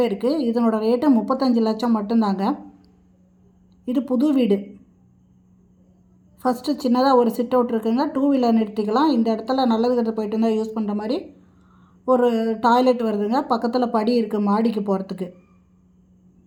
இருக்குது. இதனோட ரேட்டு 35 லட்சம் மட்டும்தாங்க. இது புது வீடு. ஃபஸ்ட்டு சின்னதாக ஒரு சிட் அவுட் இருக்குங்க. 2 வீலர் நிறுத்திக்கலாம். இந்த இடத்துல நல்லது கெட்டது போயிட்டு இருந்தால் யூஸ் பண்ணுற மாதிரி ஒரு டாய்லெட் வருதுங்க. பக்கத்தில் படி இருக்குது மாடிக்கு போகிறதுக்கு.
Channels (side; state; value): both; identical; correlation 1.00